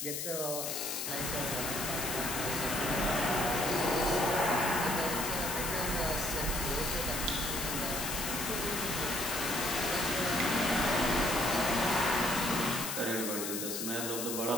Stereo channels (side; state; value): left; noise; hiss, 3 dB below the sound